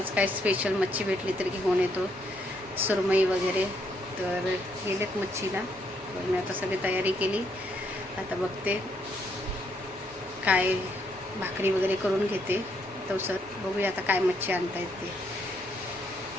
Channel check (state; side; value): normal; both; correlation 0.73